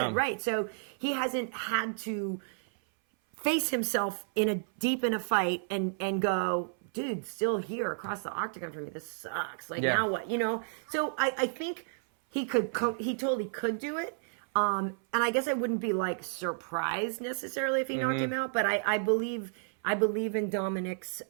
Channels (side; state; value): left; silent; 57 dB below the other